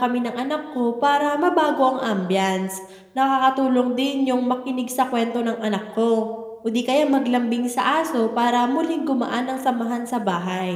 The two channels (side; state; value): both; identical; correlation 1.00